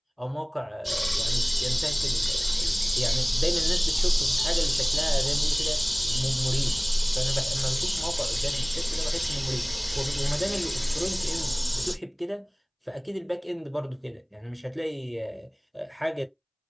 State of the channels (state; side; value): identical; both; correlation 1.00